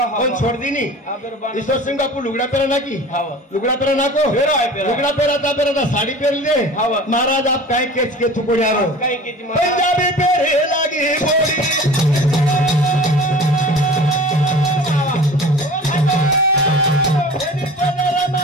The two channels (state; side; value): normal; both; correlation 0.40